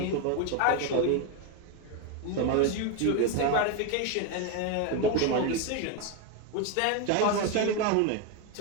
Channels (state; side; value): different; both; correlation 0.02